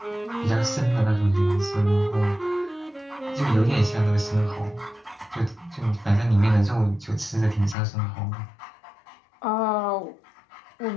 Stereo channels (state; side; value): drops out; right; at 7.8 s